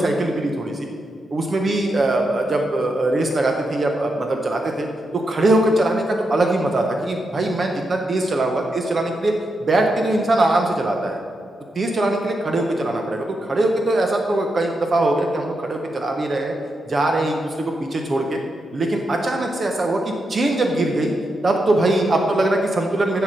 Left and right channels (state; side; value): normal; both; correlation 0.85